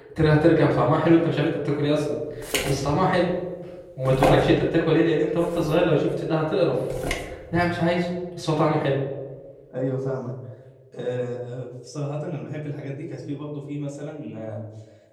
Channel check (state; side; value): identical; both; correlation 1.00